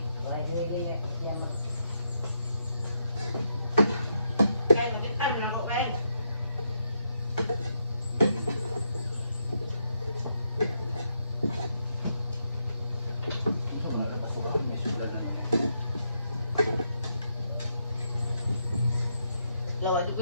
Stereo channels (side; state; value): both; inverted; correlation -0.79